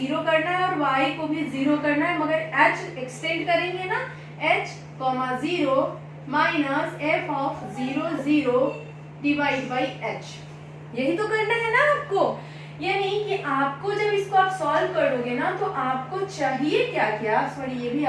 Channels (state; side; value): identical; both; correlation 1.00